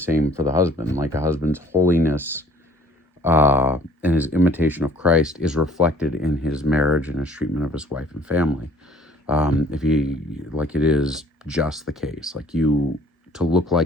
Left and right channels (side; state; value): both; normal; correlation 0.54